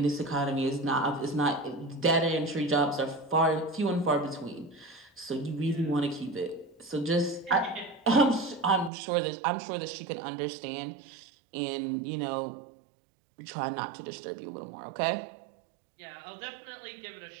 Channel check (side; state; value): left; drops out; at 8.9 s